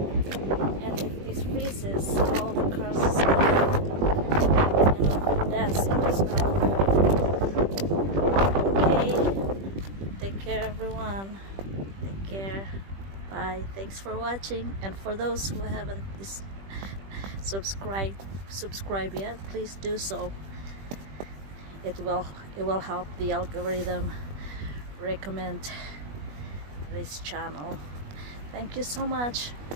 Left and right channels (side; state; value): left; late; 21 ms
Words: and if this freezes, all the cars is gonna dance in the snow. Take care everyone. Take care. Bye. Thanks for watching, and for those who haven't subscribed yet, please do so. It will help the algorithm recommend this channel. Thank you so much.